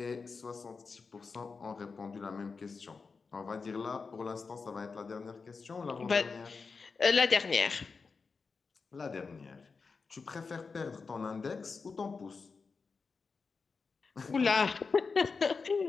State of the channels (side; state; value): right; quieter; 4.8 dB